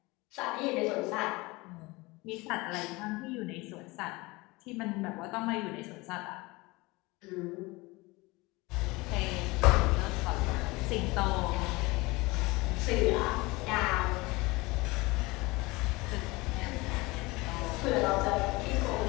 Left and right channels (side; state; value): right; quieter; 23.1 dB